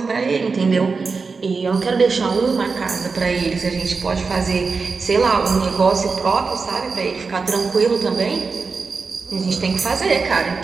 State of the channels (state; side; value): quieter; left; 4.6 dB